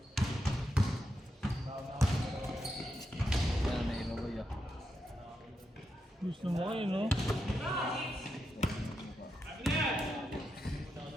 Gusto mo kayo, no?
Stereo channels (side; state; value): both; normal; correlation 0.85